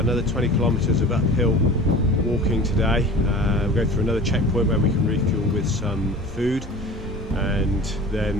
another 20 kilometres of uphill walking today. We'll go through another checkpoint where we can refuel with some food, and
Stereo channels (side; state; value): both; normal; correlation 0.40